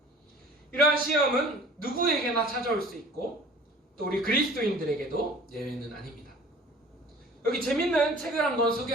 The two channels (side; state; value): both; normal; correlation 0.47